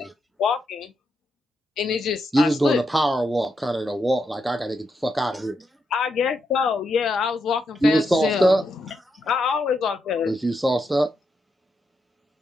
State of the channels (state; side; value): normal; both; correlation 0.82